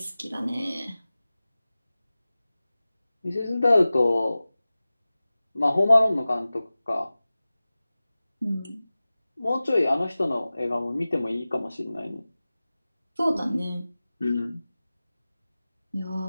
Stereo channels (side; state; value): both; inverted; correlation -0.97